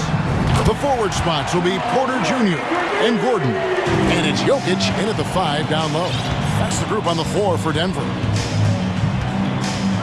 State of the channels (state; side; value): identical; both; correlation 1.00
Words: The forward spots will be Porter Jr. and Gordon. And it's Jokic in at the 5 down low. That's the group on the floor for Denver.